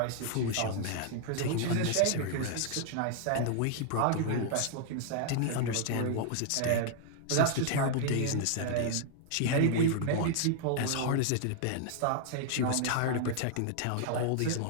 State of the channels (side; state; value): both; different; correlation 0.00